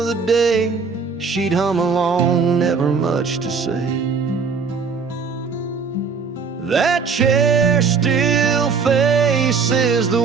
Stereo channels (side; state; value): left; quieter; 5.3 dB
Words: the day. She'd hum along, never much to say. That chair still faces the